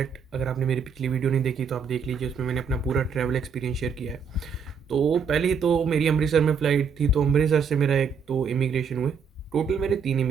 अगर आपने मेरी पिछली वीडियो नहीं देखी तो आप देख लीजिए, उसमें मैंने अपना पूरा ट्रैवल एक्सपीरियंस शेयर किया है। तो पहले तो मेरी अमृतसर में फ़्लाइट थी, तो अमृतसर से मेरा एक तो इमिग्रेशन हुए। टोटल मेरे 3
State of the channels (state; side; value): quieter; left; 5.9 dB